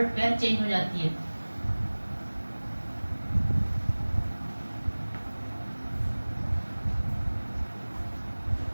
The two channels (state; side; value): inverted; both; correlation -1.00